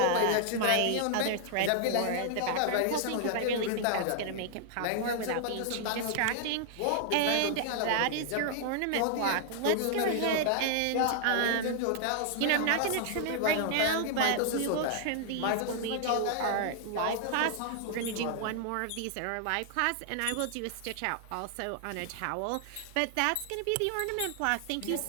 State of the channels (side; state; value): both; different; correlation 0.00